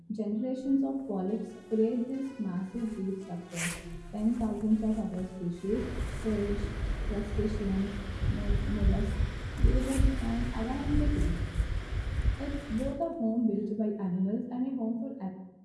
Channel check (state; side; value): identical; both; correlation 1.00